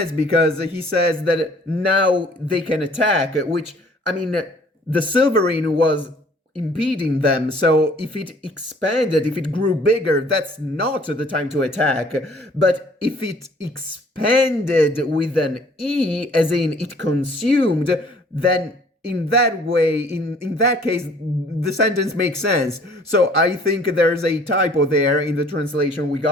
because he says that now they can attack, which, I mean, the silverine was impeding them, so if it expanded, if it grew bigger, that's not the time to attack. But if it expanded with an E, as in it consumed, then in that way, in that case, the sentence makes sense. So I think there's a typo there in the translation we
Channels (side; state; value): both; normal; correlation 0.56